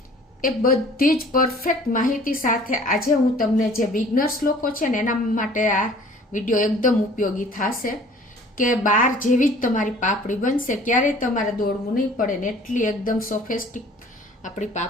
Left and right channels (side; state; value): both; normal; correlation 0.51